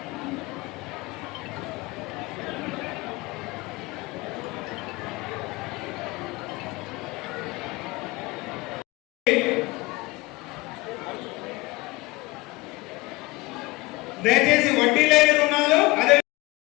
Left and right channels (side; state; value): right; quieter; 21.4 dB